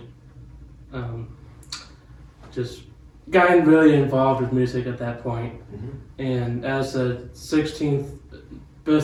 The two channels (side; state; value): both; identical; correlation 1.00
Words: just gotten really involved with music at that point. And as a 16th